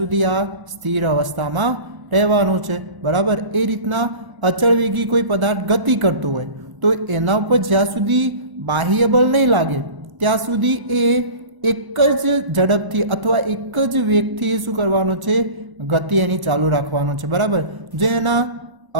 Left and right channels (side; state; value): left; late; 1.0 ms